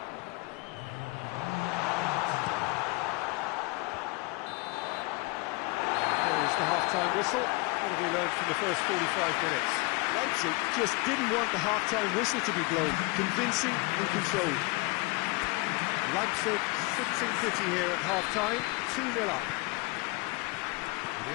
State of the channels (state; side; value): quieter; right; 25.8 dB